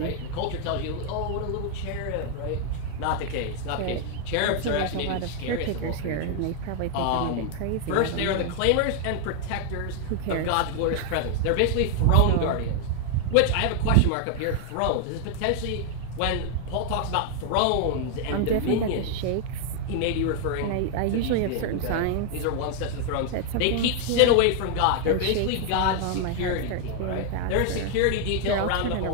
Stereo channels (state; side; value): different; both; correlation 0.00